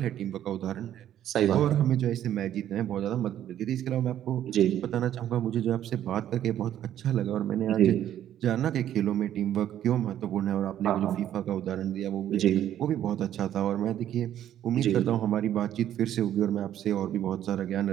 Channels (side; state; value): left; quieter; 11.2 dB